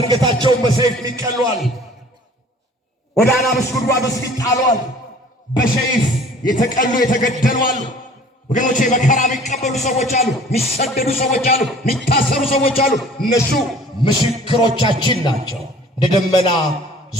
በሰይፍ ይቀሏል። ወደ አናብስት ጉድጓድ ውስጥ ይጣሏል። በሰይፍ የተቀሉ የተገደሉ አሉ። ወገኖቼ መከራ የሚቀበሉ ሰዎች አሉ፣ የሚሰደዱ ሰዎች አሉ፣ የሚታሰሩ ሰዎች አሉ። እነሱ ምስክሮቻችን ናቸው። እንደ ደመና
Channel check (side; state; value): both; normal; correlation 0.49